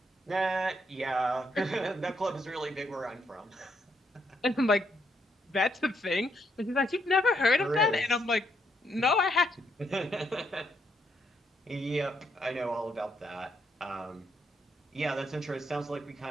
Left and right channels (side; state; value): both; normal; correlation 0.75